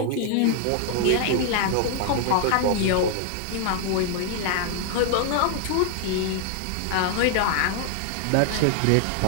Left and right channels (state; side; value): different; both; correlation 0.00